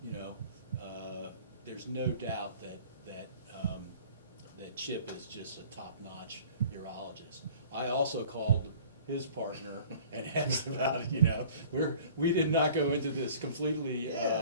you know, there's no doubt that Chip is just a top-notch urologist. I also called his partner and asked about it. You know, we did not go into this completely.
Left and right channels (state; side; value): inverted; both; correlation -0.49